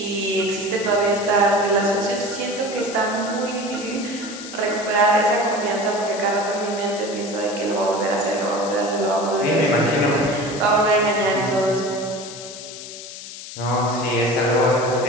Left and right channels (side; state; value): left; noise; hiss, 12 dB below the sound